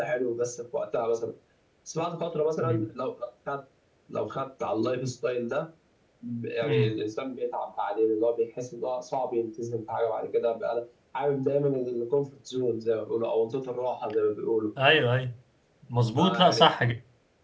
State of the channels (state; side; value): identical; both; correlation 1.00